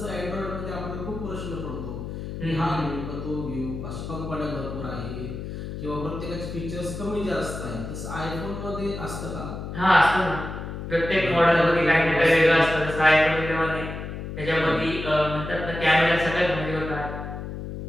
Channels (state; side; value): noise; left; hum, 7 dB below the sound